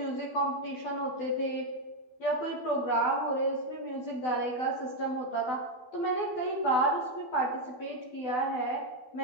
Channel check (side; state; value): right; late; 12 ms